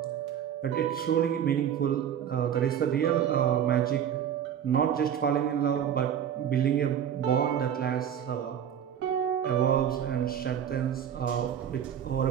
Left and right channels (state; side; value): quieter; left; 9.2 dB